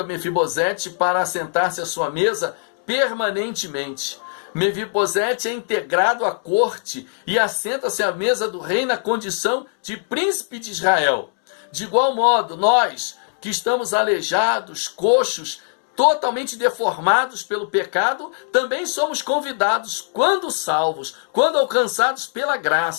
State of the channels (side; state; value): right; silent; digital silence